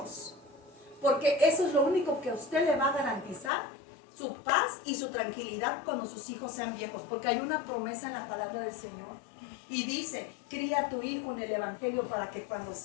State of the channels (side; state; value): right; drops out; at 3.5 s